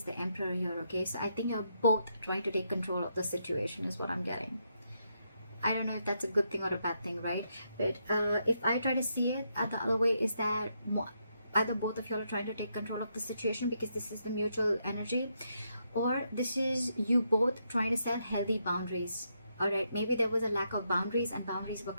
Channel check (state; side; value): inverted; both; correlation -0.79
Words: the Emperor here, okay? So I think you're both trying to take control of the situation is what I'm getting. I don't know if that's a good thing or a bad thing, right? But if I try to see it the other way, is that either both of you are trying to take control of the situation because this is the mutual energy, or this is you both trying to set healthy boundaries. All right, maybe there was a lack of boundaries and boundaries were